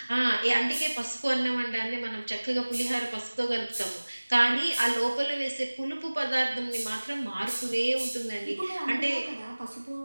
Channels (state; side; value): inverted; both; correlation -1.00